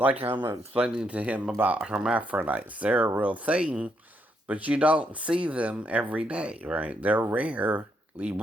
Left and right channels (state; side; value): normal; both; correlation 0.77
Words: I'm explaining to him about hermaphrodites. They're a real thing, but you don't see them every day, right? They're rarely